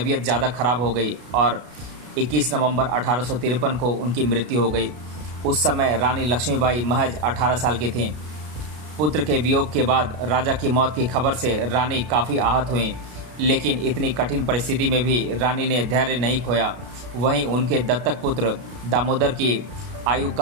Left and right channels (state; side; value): late; left; 33 ms